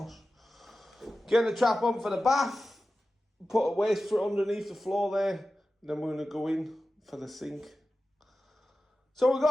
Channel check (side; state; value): both; normal; correlation 0.94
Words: Get the trap on for the bath. Put a waste for underneath the floor there. Then we're going to go in for the sink. So we've